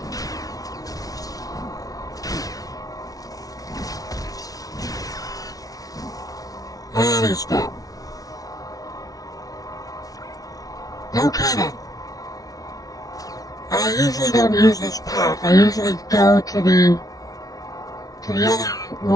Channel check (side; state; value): right; late; 0.18 ms